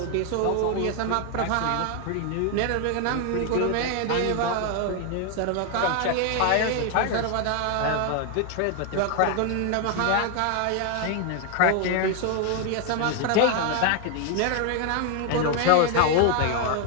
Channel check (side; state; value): both; different; correlation 0.00